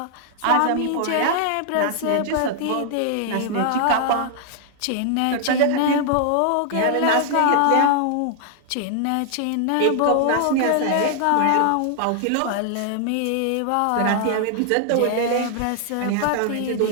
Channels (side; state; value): both; different; correlation -0.01